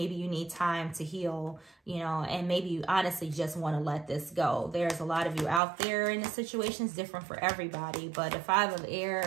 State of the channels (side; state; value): left; drops out; at 5.6 s